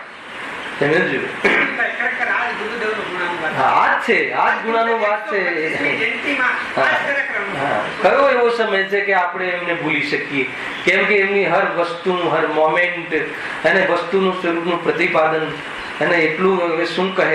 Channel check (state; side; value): identical; both; correlation 1.00